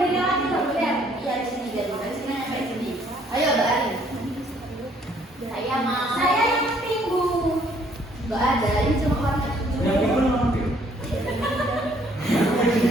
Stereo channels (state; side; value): normal; both; correlation 0.63